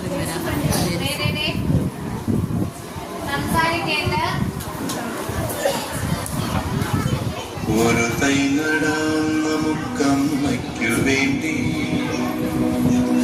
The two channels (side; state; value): both; identical; correlation 1.00